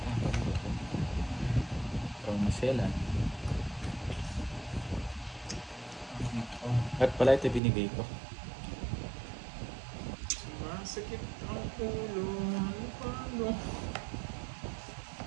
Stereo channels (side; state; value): left; drops out; at 7.6 s